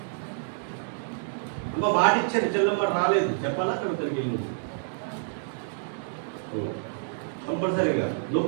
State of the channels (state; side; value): silent; left; digital silence